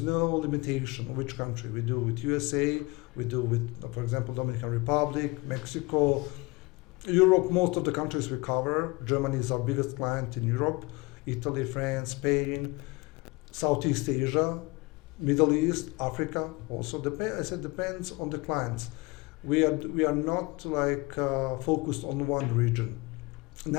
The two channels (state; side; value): quieter; right; 24.6 dB